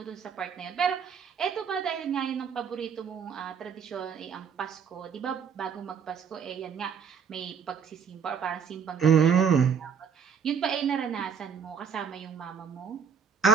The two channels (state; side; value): quieter; left; 6.8 dB